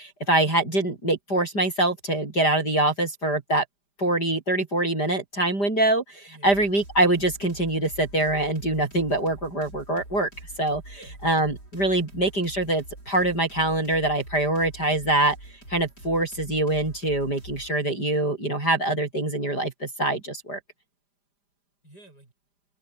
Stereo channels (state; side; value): late; right; 5.0 ms